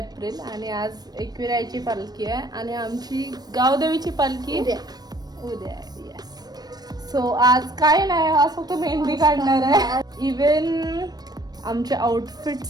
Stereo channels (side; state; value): left; late; 0.19 ms